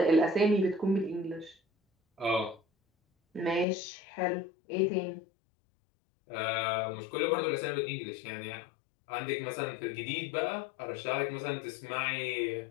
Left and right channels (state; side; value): drops out; right; at 3.7 s